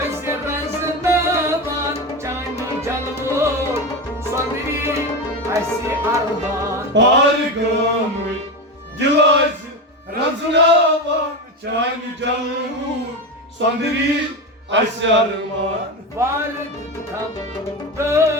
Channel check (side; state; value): both; normal; correlation 0.19